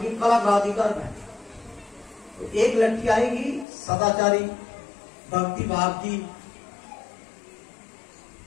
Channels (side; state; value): right; drops out; at 3.7 s